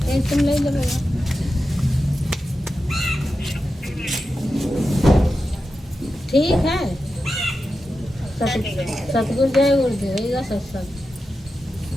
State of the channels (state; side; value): normal; both; correlation 0.91